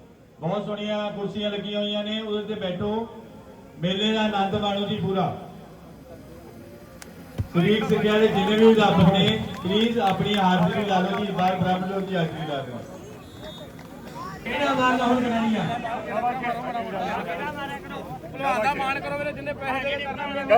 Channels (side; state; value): both; identical; correlation 1.00